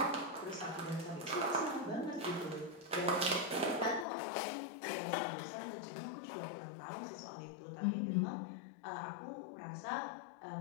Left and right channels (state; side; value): drops out; right; at 4.0 s